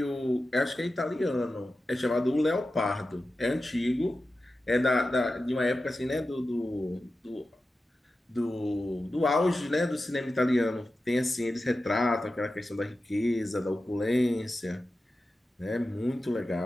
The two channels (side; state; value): both; normal; correlation 0.93